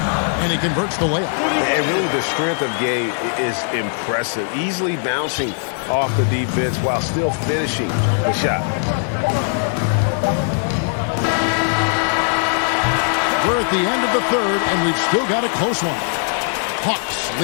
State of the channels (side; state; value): right; silent; 66 dB below the other